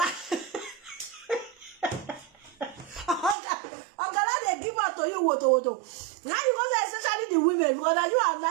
Gala they give out to you woto. Now you go say especially the women because now you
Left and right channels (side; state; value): left; drops out; at 3.4 s